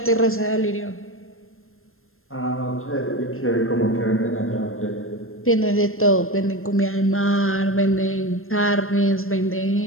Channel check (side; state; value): right; late; 0.61 ms